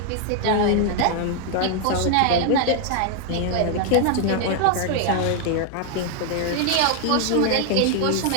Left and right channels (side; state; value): both; different; correlation 0.00